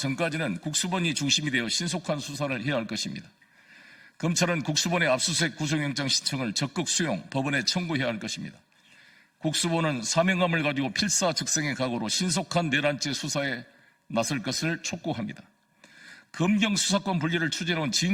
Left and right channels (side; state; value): both; identical; correlation 1.00